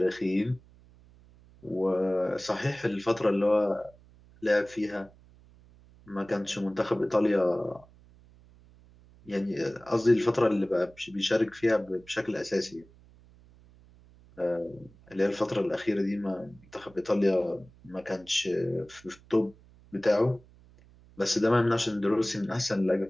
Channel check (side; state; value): right; noise; hum, 26 dB below the sound